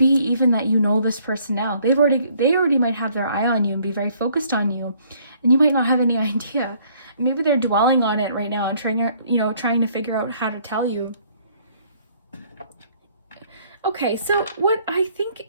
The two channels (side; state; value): both; inverted; correlation -0.62